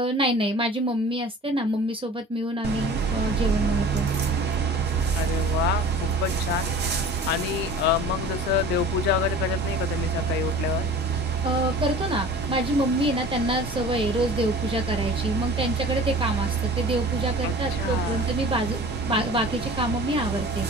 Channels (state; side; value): normal; both; correlation 0.42